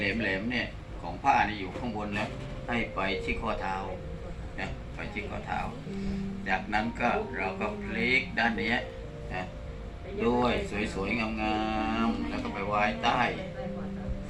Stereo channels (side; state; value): both; identical; correlation 1.00